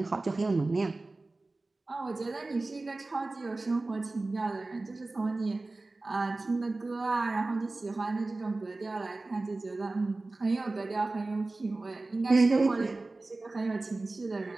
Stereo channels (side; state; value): left; quieter; 3.2 dB